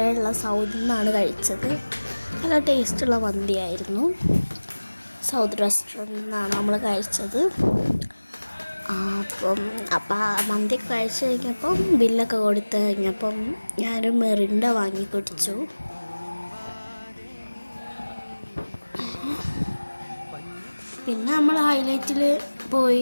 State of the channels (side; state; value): both; inverted; correlation -1.00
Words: സൗദിൽ നിന്നാണ് കഴിച്ചത്. നല്ല ടേസ്റ്റുള്ള മന്തിയായിരുന്നു. സൗദ് റെസ്റ്റോറൻറ്റിൽ നിന്നാണ് നമ്മൾ കഴിച്ചത്. അപ്പം മന്തി കഴിച്ച് കഴിഞ്ഞപ്പം ബില്ലൊക്കെ കൊടുത്ത് കഴിഞ്ഞപ്പം ഞാനൊരു മെറിൻഡ വാങ്ങി കുടിച്ചു. പിന്നെ നമ്മൾ ഹൈലൈറ്റിൽ